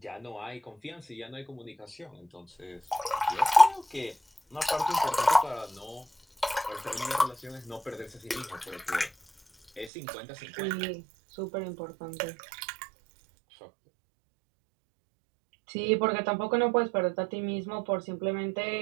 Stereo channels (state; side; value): drops out; left; at 9.9 s